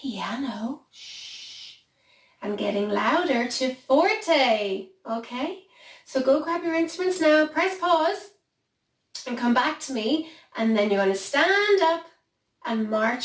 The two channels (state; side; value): identical; both; correlation 1.00